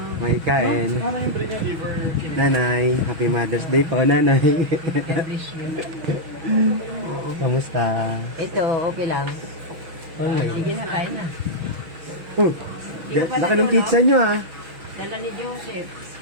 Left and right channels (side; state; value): left; late; 6.2 ms